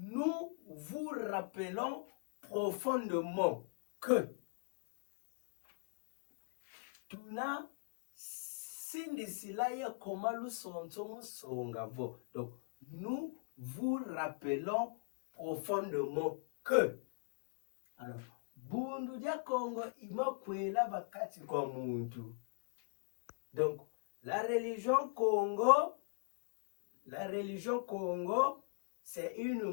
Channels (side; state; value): right; quieter; 35.4 dB